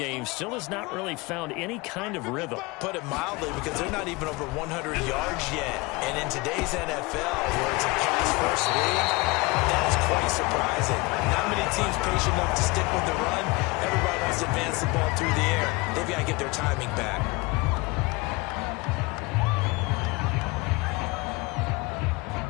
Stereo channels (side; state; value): right; quieter; 24.1 dB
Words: still has not really found any kind of rhythm. Put it mildly, because they're not even over 100 yards yet. And in today's NFL, where it's a pass-first league, that is quite surprising. Not many teams patient enough to stick with the run. Everybody wants to advance the ball through the air. They've got to get their timing back.